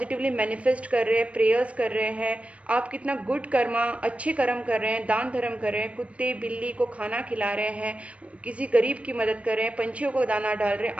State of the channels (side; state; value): left; late; 0.063 ms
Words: मैनिफेस्ट कर रहे हैं, प्रेयर्स कर रहे हैं, आप कितना गुड कर्मा, अच्छे कर्म कर रहे हैं, दान धर्म कर रहे हैं, कुत्ते बिल्ली को खाना खिला रहे हैं, किसी गरीब की मदद कर रहे हैं, पंछियों को दाना डाल रहे हैं,